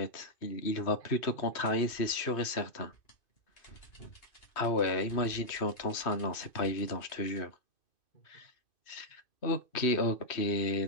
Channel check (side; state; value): right; late; 2.5 ms